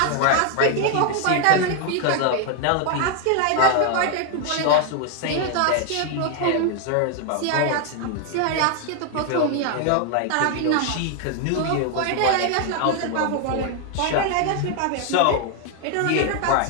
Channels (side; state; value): both; different; correlation 0.00